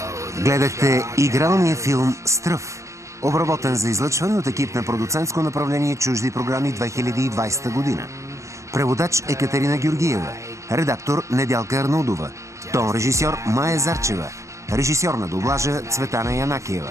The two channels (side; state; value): left; late; 0.15 ms